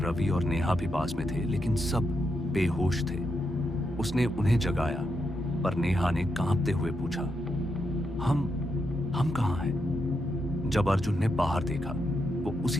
और नेहा भी पास में थे, लेकिन सब बेहोश थे। उसने उन्हें जगाया, पर नेहा ने कांपते हुए पूछा, हम कहाँ हैं? जब अर्जुन ने बाहर देखा, वो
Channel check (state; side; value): normal; both; correlation 0.83